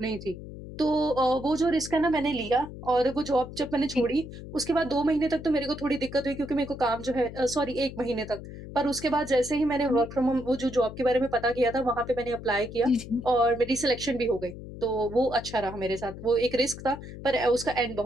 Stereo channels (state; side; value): noise; left; hum, 12 dB below the sound